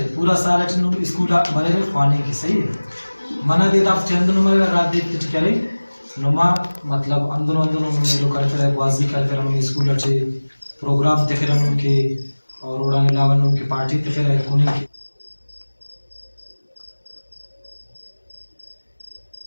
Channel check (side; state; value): both; inverted; correlation -1.00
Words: نو اسکول مرے رے خوانے کی صحیح ہے. منہ دیتا آپ چند نو مرے رات دیت کچھ کرے نما مطلب اندنو میلو کرتے رہے واضح کرتے رہے اسکول اچھے پروگرام دیکھے رہے ان کے اور اڑانے لاون ان کی پارٹی دیکھے رہے انہیں کی.